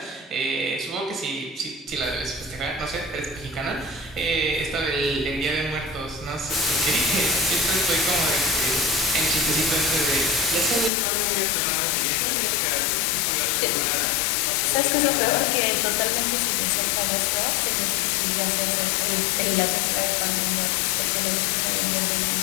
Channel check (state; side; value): drops out; right; at 10.9 s